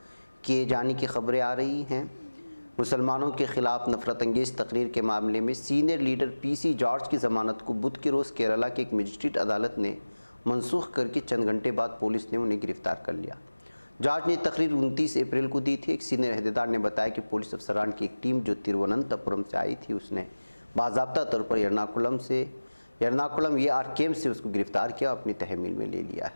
किए जाने की खबरें आ रही हैं। मुसलमानों के ख़िलाफ़ नफ़रत अंगेज़ तकरीर के मामले में सीनियर लीडर PC जॉर्ज की ज़मानत को बुध के रोज़ केरला के एक मजिस्ट्रेट अदालत ने मनसूख करके चंद घंटे बाद पुलिस ने उन्हें गिरफ़्तार कर लिया। जॉर्ज ने तकरीर 29 अप्रैल को दी थी। एक सीनियर अहदेदार ने बताया कि पुलिस अफसरान की एक टीम जो तिरुवनंतपुरम से आई थी, उसने बाज़ाब्ता तौर पर एर्नाकुलम AR कैंप से उसको गिरफ़्तार किया और अपनी तहमील में ले लिया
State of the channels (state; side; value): inverted; both; correlation -1.00